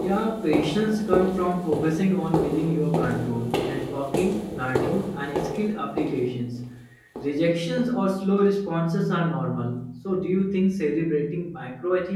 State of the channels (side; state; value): both; identical; correlation 1.00